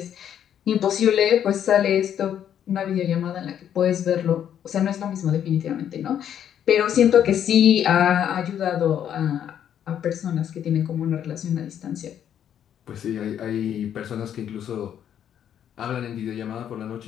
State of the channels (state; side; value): quieter; right; 9.6 dB